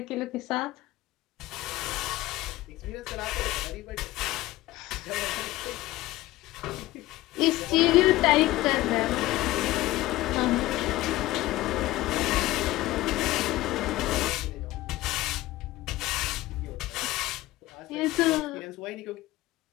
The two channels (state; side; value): quieter; right; 17.2 dB